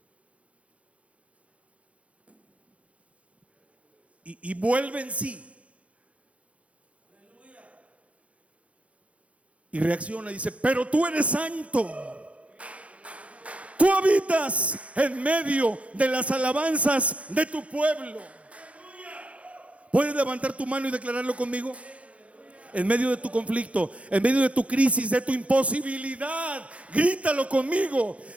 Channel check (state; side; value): late; left; 0.064 ms